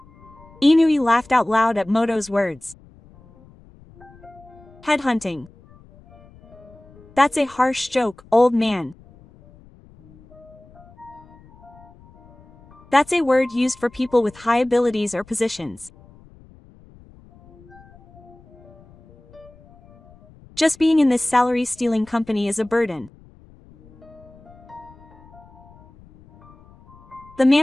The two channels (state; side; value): noise; left; rumble, 25 dB below the sound